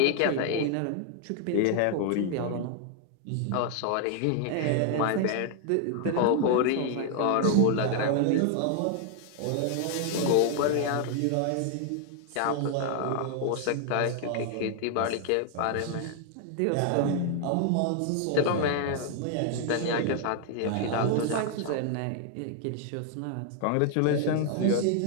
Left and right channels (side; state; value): both; different; correlation 0.00